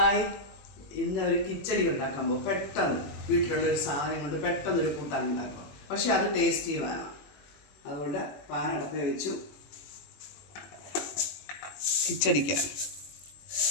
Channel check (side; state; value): right; late; 21 ms